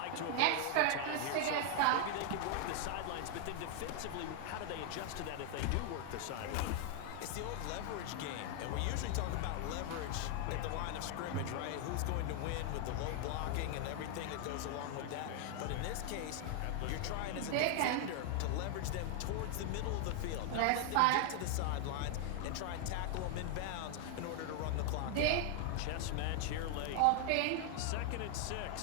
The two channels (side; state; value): both; different; correlation 0.00